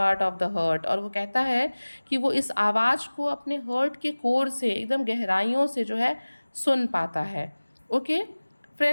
of the heart, और वो कहता है कि वो इस आवाज़ को अपने हर्ट के कोर से, एकदम गहराइयों से जो है सुन पाता है। ओके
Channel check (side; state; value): both; inverted; correlation -1.00